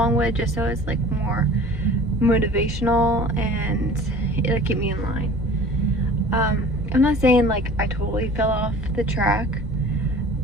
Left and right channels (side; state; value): both; normal; correlation 0.44